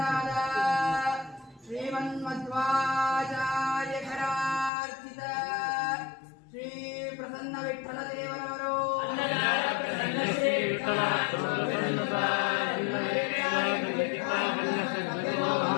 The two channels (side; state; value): right; drops out; at 4.7 s